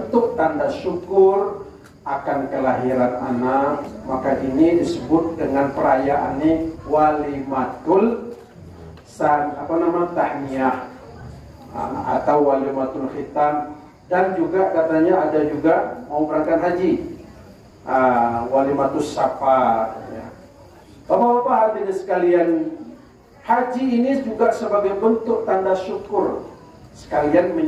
tanda syukur akan kelahiran anak, maka ini disebut dengan perayaan ini walimatul tahniyah atau walimatul khitan. Dan juga katanya ada juga mau berangkat haji, walimatus safar ya. Bapak-bapak hadirin sekalian, haji ini juga sebagai bentuk tanda syukur sekalian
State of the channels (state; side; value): identical; both; correlation 1.00